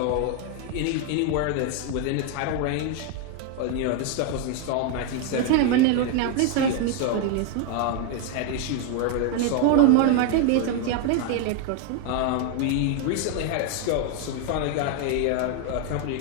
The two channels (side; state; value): both; different; correlation 0.01